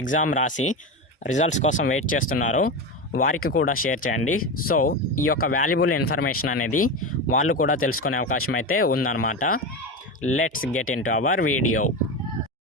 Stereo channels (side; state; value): both; normal; correlation 0.19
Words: ఎగ్జామ్ రాసి రిజల్ట్స్ కోసం వెయిట్ చేస్తున్నారో వారికి కూడా షేర్ చేయండి. సో ఈ యొక్క వాల్యుబుల్ ఇన్ఫర్మేషన్ అనేది వాళ్ళు కూడా తెలుసుకునే అవకాశం అయితే ఉందన్నమాట. Let's get in to our video.